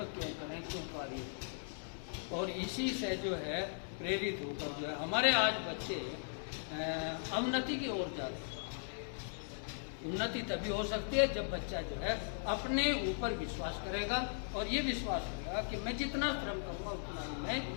क्यों करें, क्यों कार्य? और इसी से जो है प्रेरित होकर जो है हमारे आज बच्चे अवनति की ओर जा रहे हैं। उन्नति तभी हो सकती है जब बच्चा जो है अपने ऊपर विश्वास करेगा और ये विश्वास होगा कि मैं जितना श्रम करूँगा उतना ही मैं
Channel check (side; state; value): right; silent; digital silence